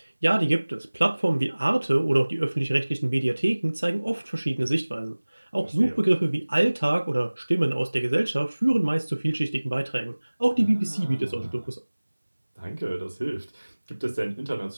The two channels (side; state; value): both; inverted; correlation -1.00